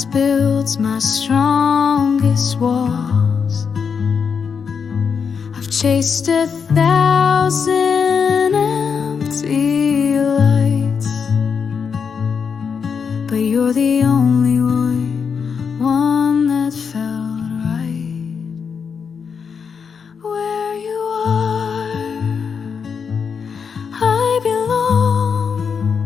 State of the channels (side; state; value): right; quieter; 6.3 dB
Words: builds my strongest walls. I've chased 1,000 empty lights, but you're the only one that felt right. Where you are, I belong.